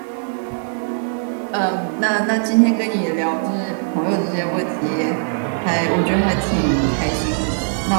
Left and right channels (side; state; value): left; silent; digital silence